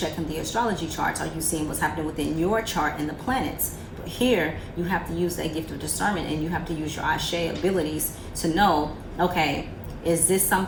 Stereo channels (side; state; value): both; identical; correlation 1.00